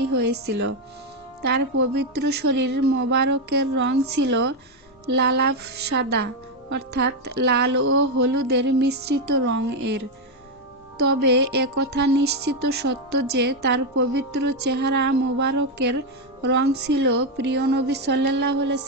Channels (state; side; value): normal; both; correlation 0.05